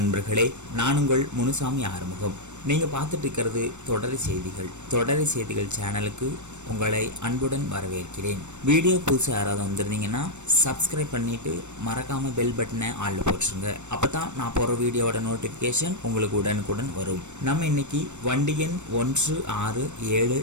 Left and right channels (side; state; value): left; late; 0.84 ms